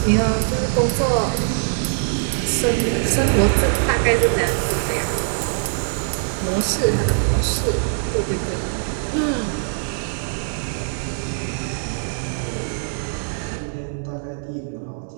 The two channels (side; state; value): left; silent; 64 dB below the other